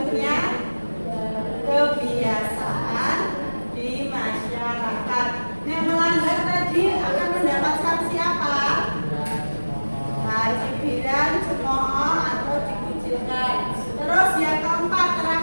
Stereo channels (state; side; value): inverted; both; correlation -1.00